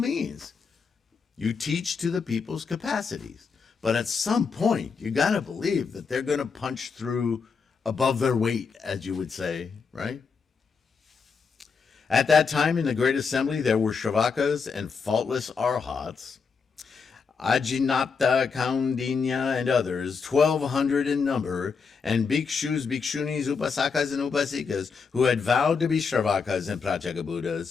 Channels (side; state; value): right; quieter; 5.4 dB